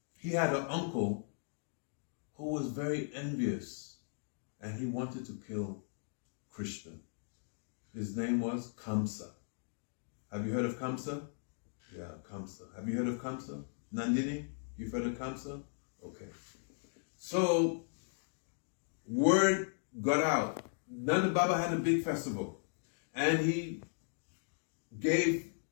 he had an uncle who was very envious, and he wanted to kill Krishna. His name was Kamsa. Have you heard of Kamsa? Yeah, Kamsa. Have you heard of Kamsa? Nandini, you've heard of Kamsa? Okay. So word got out. Nanda Baba had a big festival, and he gave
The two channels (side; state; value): right; silent; digital silence